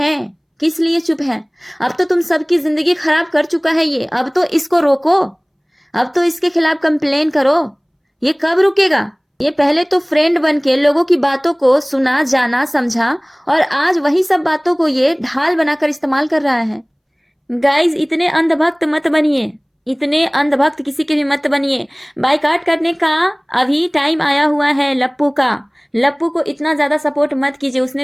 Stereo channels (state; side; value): identical; both; correlation 1.00